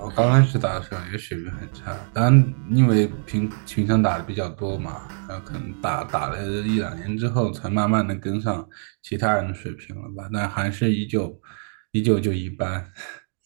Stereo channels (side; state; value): left; silent; 61 dB below the other